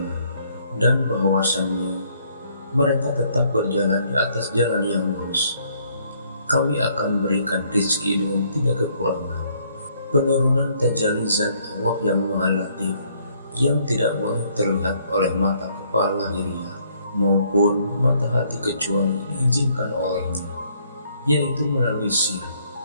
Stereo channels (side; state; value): both; inverted; correlation -0.66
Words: dan bahwasannya mereka tetap berjalan di atas jalan yang lurus, kami akan berikan rizki dengan tidak kekurangan. Penurunan tajalli zat Allah yang Maha Latif, yang tidak boleh terlihat oleh mata kepala lahiriah maupun mata hati kecuali diizinkan olehnya, yaitu melalui sir,